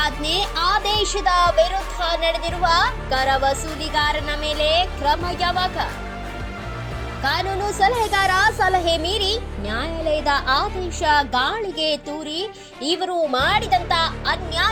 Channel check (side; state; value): both; identical; correlation 1.00